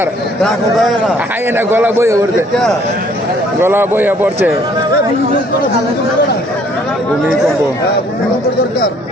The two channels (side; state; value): both; normal; correlation 0.61